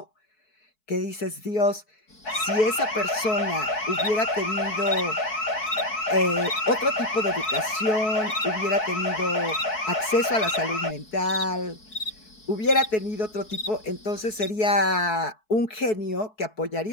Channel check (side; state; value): right; late; 4.6 ms